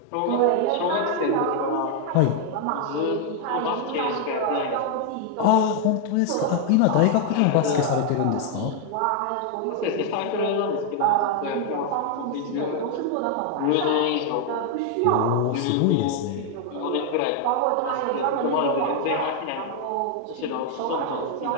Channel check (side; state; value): both; different; correlation 0.00